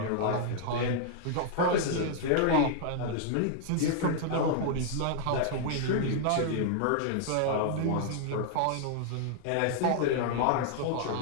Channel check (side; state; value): both; different; correlation -0.01